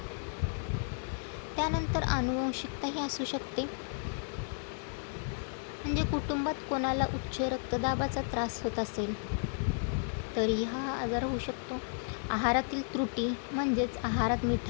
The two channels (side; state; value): right; silent; 56 dB below the other